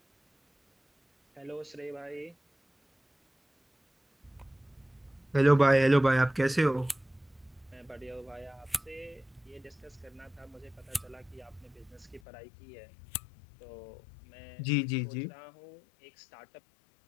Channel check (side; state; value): right; drops out; at 12.2 s